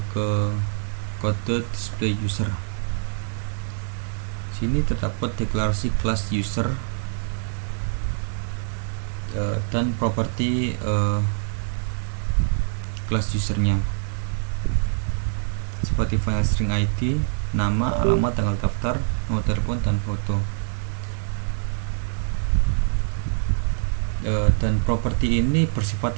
ke kode display user. Sini terdapat deklarasi kelas user dan properti kelas usernya seperti file string ID, nama, alamat, tanggal daftar, nomor telepon, dan foto. Dan properti ini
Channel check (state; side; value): silent; left; digital silence